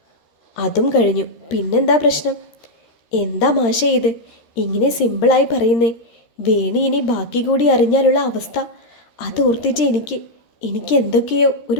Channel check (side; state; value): right; late; 13 ms